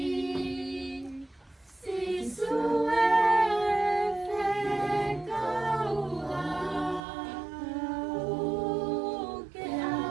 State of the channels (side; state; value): left; drops out; at 7.0 s